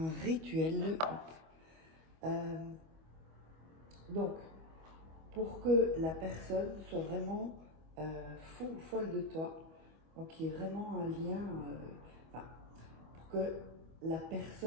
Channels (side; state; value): left; late; 25 ms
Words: rituel. Euh, donc, pour que la personne soit vraiment folle de toi, donc il y ait vraiment un lien, enfin, pour que la